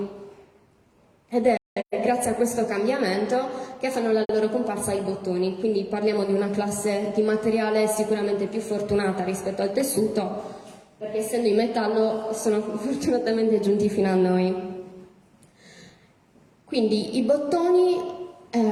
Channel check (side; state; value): both; identical; correlation 1.00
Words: Ed è grazie a questo cambiamento che fanno la loro comparsa i bottoni, quindi parliamo di una classe di materiale sicuramente più fortunata rispetto al tessuto, perché essendo in metallo sono fortunatamente giunti fino a noi. Quindi i bottoni